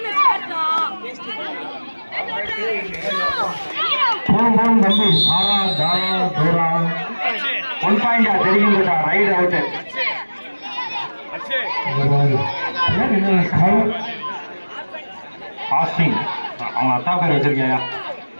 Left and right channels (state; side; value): inverted; both; correlation -1.00